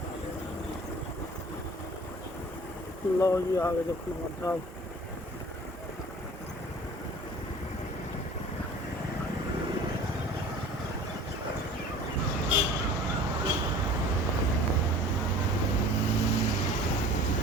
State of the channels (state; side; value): normal; both; correlation 0.44